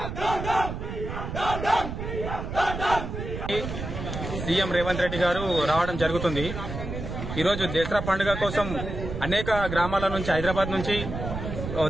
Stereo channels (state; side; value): noise; right; rumble, 6 dB below the sound